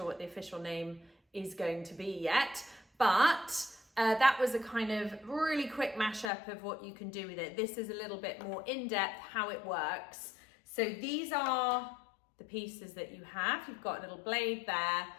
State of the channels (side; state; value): right; drops out; at 6.3 s